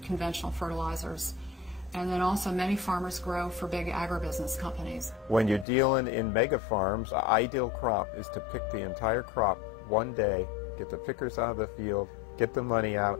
fertilizers. And then also many farmers grow for big agribusiness companies. When you're dealing in mega farms, the ideal crop is to pick the entire crop one day, get the pickers out of the field, get the money out,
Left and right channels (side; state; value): right; drops out; at 5.7 s